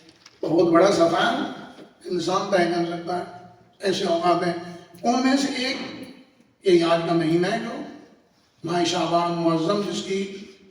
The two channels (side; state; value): both; identical; correlation 1.00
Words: بہت بڑا سفر انسان طے کر سکتا ہے۔ ایسے اوقات ہیں، ان میں سے ایک یہ آج کا مہینہ ہے جو ماہ شعبان معظم، جس کی